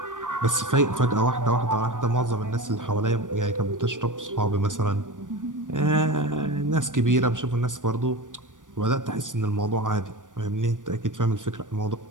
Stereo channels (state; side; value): late; left; 0.87 ms